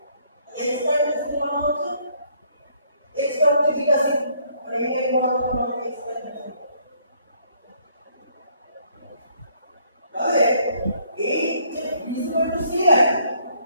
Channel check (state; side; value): inverted; both; correlation -0.66